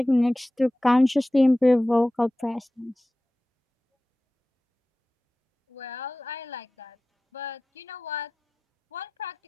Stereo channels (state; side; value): normal; both; correlation 0.96